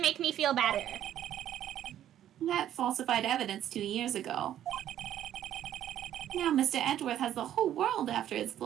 me feel better. That falsified evidence 2 years ago. Now Mr. Edgeworth has the whole world after his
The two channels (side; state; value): left; quieter; 11.4 dB